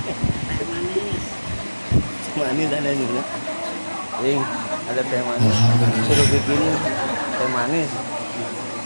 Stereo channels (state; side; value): inverted; both; correlation -1.00